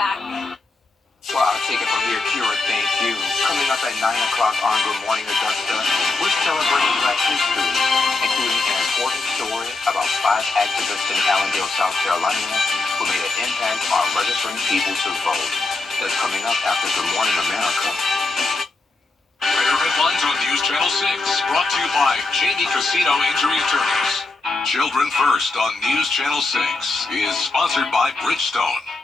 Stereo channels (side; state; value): right; quieter; 3.5 dB